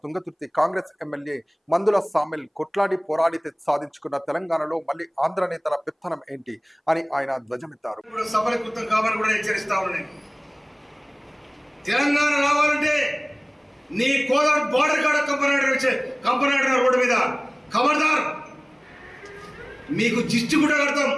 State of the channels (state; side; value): identical; both; correlation 1.00